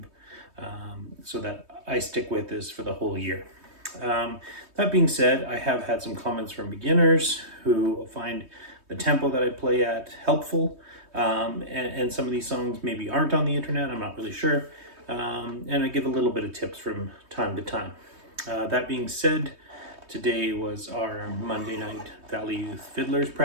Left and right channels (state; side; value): late; left; 3.2 ms